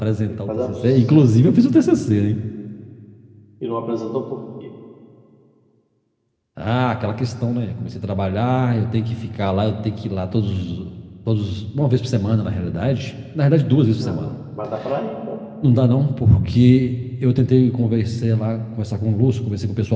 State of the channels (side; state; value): both; identical; correlation 1.00